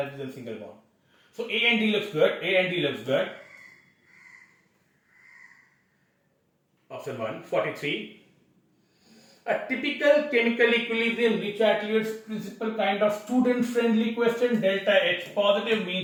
than single bond. So A and D looks good. A and D looks good. Option 1, 43. A typical chemical equilibrium rich attributes principle kind of student friendly question. Delta H positive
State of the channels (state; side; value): identical; both; correlation 1.00